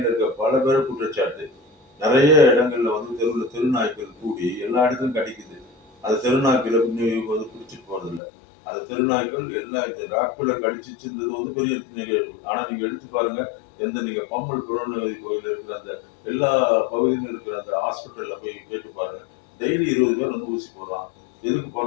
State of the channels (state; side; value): drops out; right; at 8.2 s